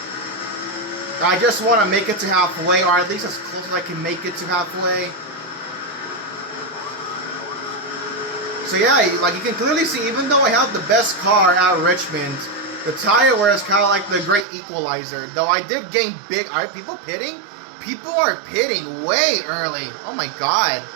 I just want to make it to halfway, or at least as close as I can make it to halfway. So yeah, like you can clearly see, even though I have the best car at Richmond, the tire wear is kind of like the great equalizer. Though I did gain big. Are people pitting? People are pitting way early. Oh my god.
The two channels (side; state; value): left; drops out; at 14.5 s